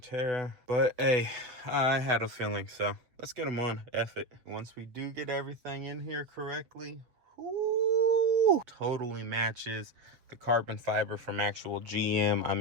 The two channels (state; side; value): late; left; 7.7 ms